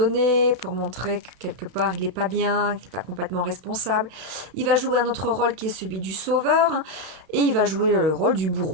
pour montrer que quelque part il n'est pas bien, qu'il n'est pas complètement responsable. Il va jouer un autre rôle qui est celui du sauveur, et il va jouer le rôle du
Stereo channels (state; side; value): late; left; 32 ms